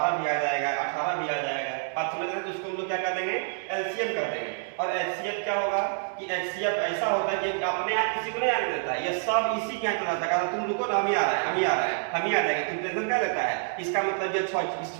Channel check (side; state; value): left; silent; digital silence